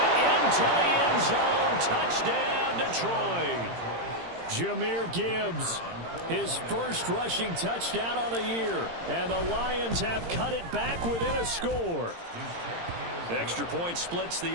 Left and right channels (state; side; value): late; left; 17 ms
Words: into the end zone. Touchdown, Detroit. Jahmyr Gibbs, his first rushing touchdown on the year. And the Lions have cut it back within a score. Extra point splits